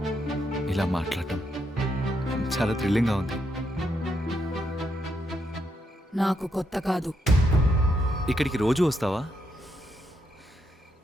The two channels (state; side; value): normal; both; correlation 0.79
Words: ఇలా మాట్లాడటం చాలా థ్రిల్లింగ్గా ఉంది. నాకు కొత్త కాదు. ఇక్కడికి రోజు వస్తావా?